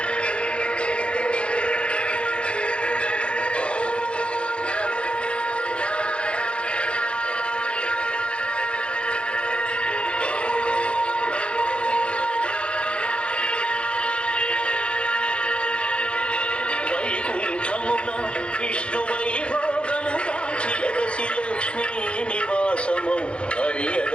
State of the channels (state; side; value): late; right; 0.057 ms